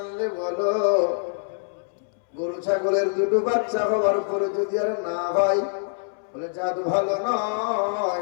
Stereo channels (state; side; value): silent; right; 62 dB below the other